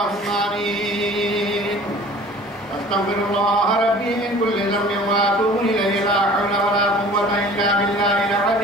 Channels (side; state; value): both; normal; correlation 0.46